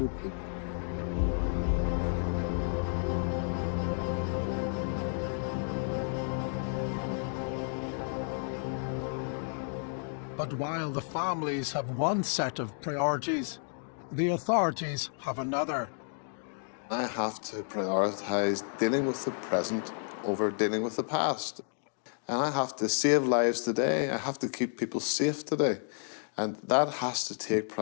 people. But while the families have one set of priorities, the authorities have another. I have to prioritise dealing with the present over dealing with the past. And I have to save lives today. I have to keep people safe today. And that has to take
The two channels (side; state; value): right; silent; 57 dB below the other